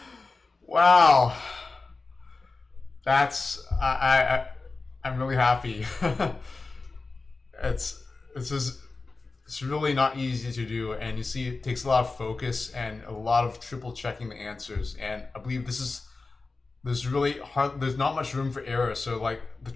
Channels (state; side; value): quieter; right; 3.8 dB